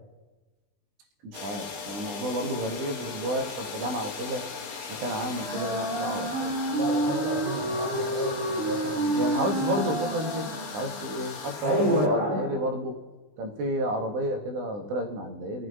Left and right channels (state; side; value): late; left; 20 ms